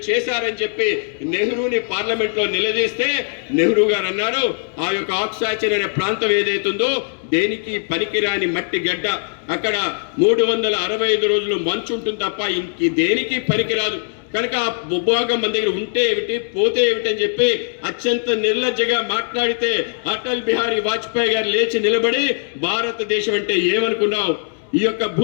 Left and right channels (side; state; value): right; silent; 66 dB below the other